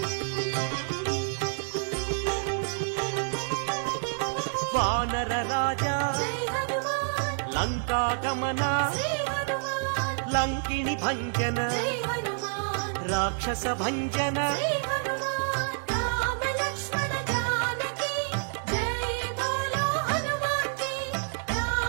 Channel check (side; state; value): left; silent; digital silence